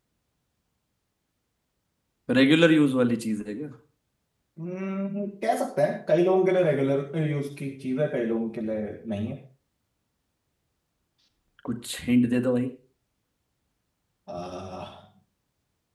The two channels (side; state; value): both; identical; correlation 1.00